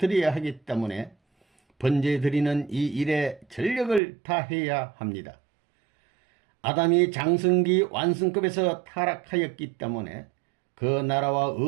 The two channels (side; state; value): left; drops out; at 4.0 s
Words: 하기 때문에 번제 드리는 이 일에 전력을 다해야 합니다. 아담이 장성기 완성급에서 타락하였기 때문에 그 나라와